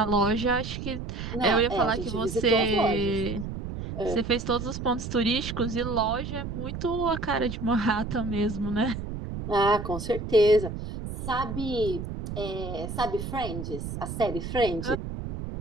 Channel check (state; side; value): noise; right; rumble, 6 dB below the sound